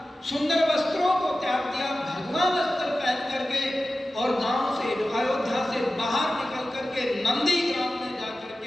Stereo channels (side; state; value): both; normal; correlation 0.94